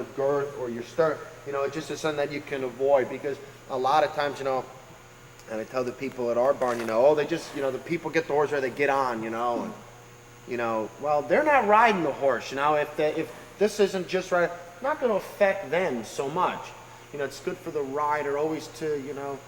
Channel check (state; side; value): identical; both; correlation 1.00